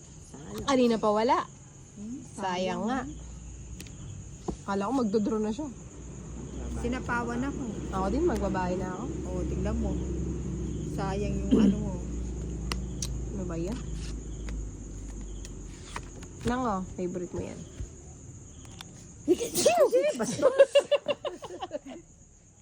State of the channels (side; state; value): both; identical; correlation 1.00